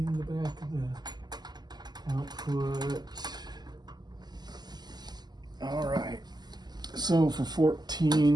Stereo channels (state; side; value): late; left; 0.20 ms